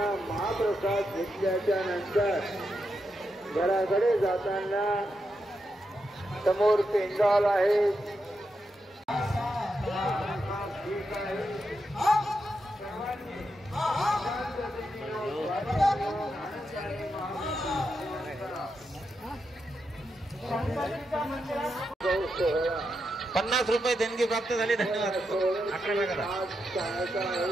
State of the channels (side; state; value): both; normal; correlation 0.85